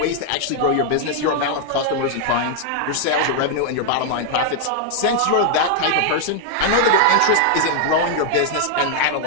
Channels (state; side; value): different; both; correlation 0.00